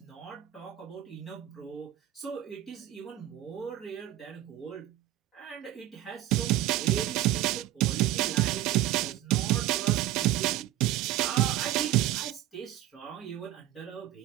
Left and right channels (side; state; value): left; quieter; 13.9 dB